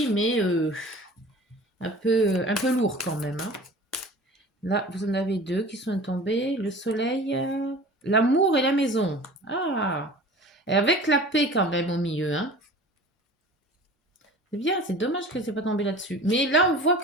mais un peu lourd quand même. Hein. Là, vous en avez deux qui sont tombés. Le soleil, l'amour et la maison. Ah, et avec la paix quand même au milieu, hein. C'est bien, c'est dommage que c'est pas tombé là-dessus. Mais là, on voit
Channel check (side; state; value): both; normal; correlation 0.41